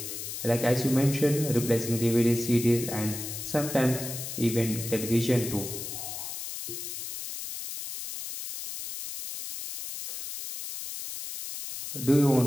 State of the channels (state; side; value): noise; left; hiss, 7 dB below the sound